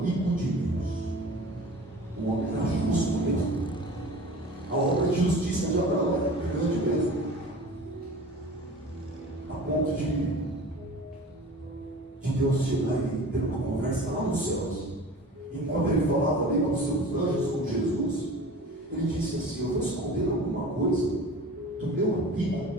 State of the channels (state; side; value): normal; both; correlation 0.39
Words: de Deus. O homem era justo mesmo. A obra de justiça de Abraão era grande mesmo, a ponto de Deus chegar e ter uma conversa lá nos céus. Enquanto ele falava ali com os seus anjos, com Jesus, ele disse assim: eu vou esconder alguma coisa do meu amigo